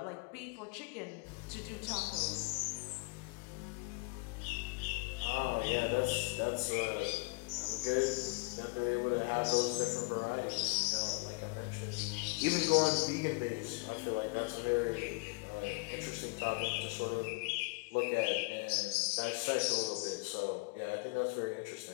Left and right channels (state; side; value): quieter; right; 29.6 dB